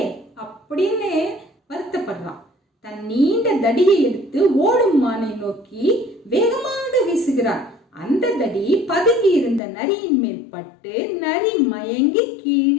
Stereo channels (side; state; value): right; drops out; at 9.6 s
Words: அப்படின்னு வருத்தப்படுறான். தன் நீண்ட தடியை எடுத்து ஓடும் மானை நோக்கி வேகமாக வீசுகிறான். அந்த தடி பதுங்கி இருந்த நரியின் மேல் பட்டு நரி மயங்கி